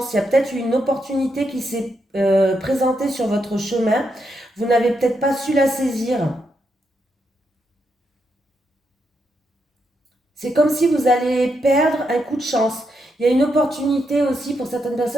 Il y a peut-être une opportunité qui s'est présentée sur votre chemin. Vous n'avez peut-être pas su la saisir. C'est comme si vous allez perdre un coup de chance. Il y a une opportunité aussi pour certaines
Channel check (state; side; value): normal; both; correlation 0.81